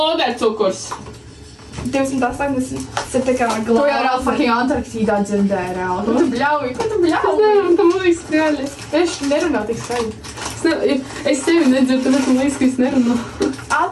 280. Tas ir tā kā Tu jau glāzi. reāli fucking Antarktīdā dzirdēji reāli. Ko tu bļauji? Ko tu bļauji? Nē, tam liekas skaļi. Es nerunāju tik skaļi. Es tevi nedzirdu, tāpēc man liekas, ka es nerunāju.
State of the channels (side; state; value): both; identical; correlation 1.00